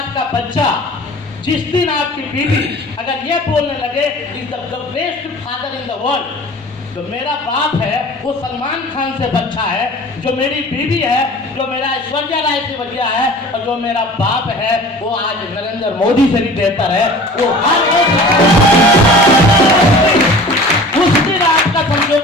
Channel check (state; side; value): normal; both; correlation 0.42